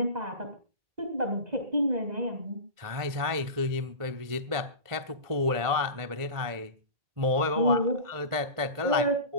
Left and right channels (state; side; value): late; left; 1.5 ms